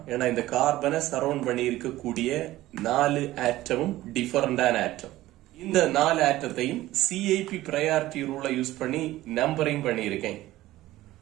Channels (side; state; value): left; quieter; 16.1 dB